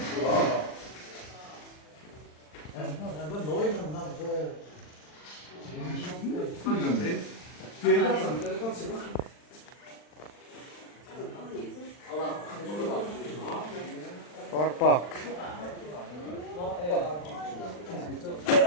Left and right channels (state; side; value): late; right; 40 ms